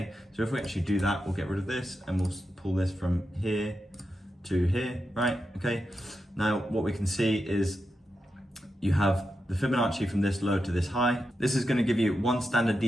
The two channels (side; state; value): both; normal; correlation 0.88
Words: So if we actually do that, we'll get rid of this and we'll pull this from here to here, right? Okay. Now what we can see is you have the Fibonacci from this low to this high. This is going to give you one standard